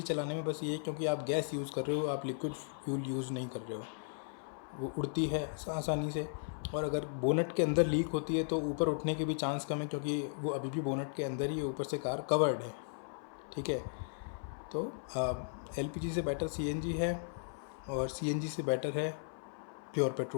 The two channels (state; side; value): silent; right; 54 dB below the other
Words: चलाने में बस ये, क्योंकि आप गैस यूज़ कर रहे हो, आप लिक्विड फ्यूल यूज़ नहीं कर रहे हो, वो उड़ती है आसानी से, और अगर बोनट के अंदर लीक होती है तो ऊपर उठने के भी चांस कम है, क्योंकि वो अभी भी बोनट के अंदर ही है, ऊपर से कार कवर्ड है, ठीक है। तो एलपीजी से बेटर सीएनजी है और सीएनजी से बेटर है प्योर